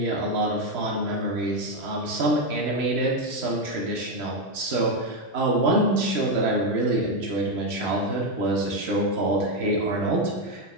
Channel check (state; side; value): normal; both; correlation 0.06